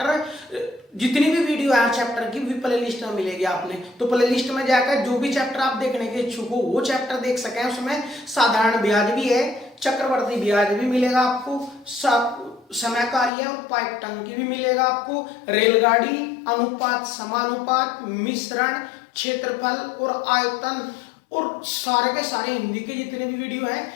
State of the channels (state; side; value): drops out; right; at 13.3 s